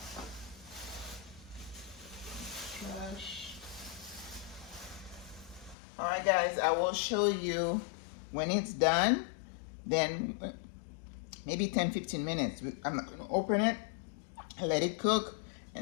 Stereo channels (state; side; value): drops out; right; at 5.8 s